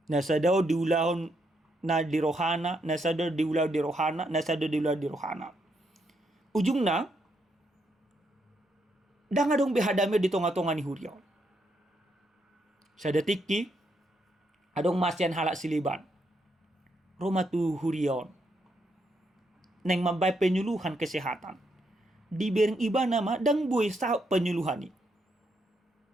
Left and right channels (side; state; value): both; normal; correlation 0.78